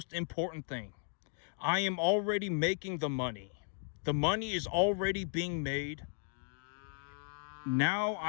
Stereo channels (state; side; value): silent; right; 54 dB below the other